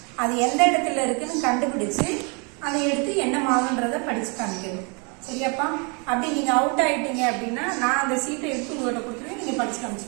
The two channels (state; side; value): quieter; left; 33.9 dB